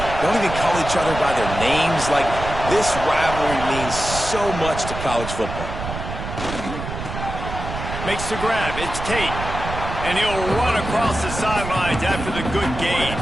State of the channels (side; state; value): right; noise; rumble, 7 dB below the sound